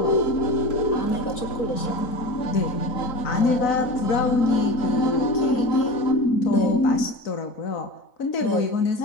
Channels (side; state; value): right; late; 4.0 ms